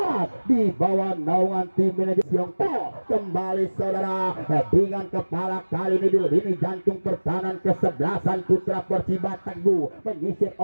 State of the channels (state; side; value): inverted; both; correlation -1.00